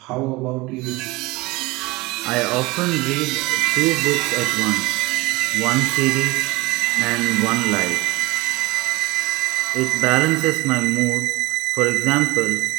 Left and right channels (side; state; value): left; quieter; 21.8 dB